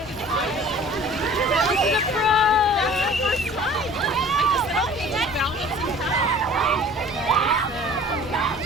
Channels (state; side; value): normal; both; correlation 0.47